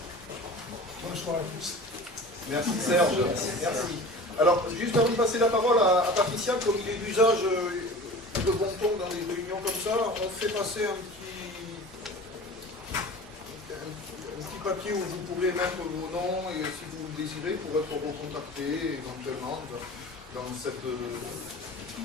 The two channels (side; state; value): both; normal; correlation 0.38